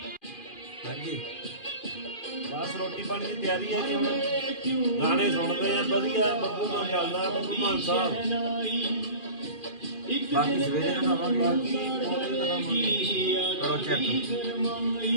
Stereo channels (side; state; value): right; late; 2.4 ms